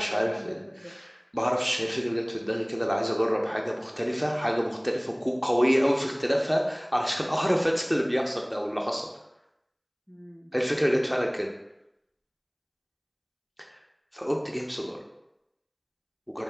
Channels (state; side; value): identical; both; correlation 1.00